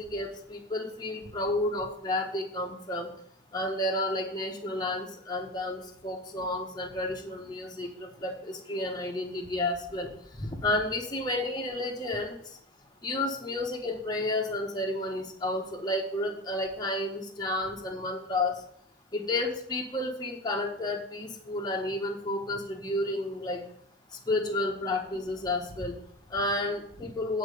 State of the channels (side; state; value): both; normal; correlation 0.27